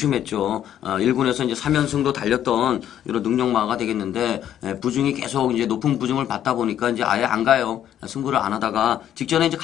1군에서 이제 3연승도 달렸던 이런 능력마가 되겠는데 부중이 계속 이제 높은 부중을 받다 보니까 이제 아예 안 가요. 승부를 안 하다가 직전에 이제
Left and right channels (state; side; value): quieter; right; 10.7 dB